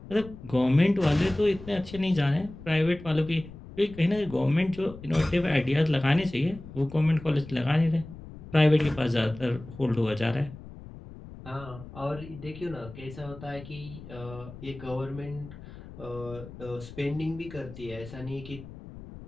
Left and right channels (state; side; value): noise; left; rumble, 15 dB below the sound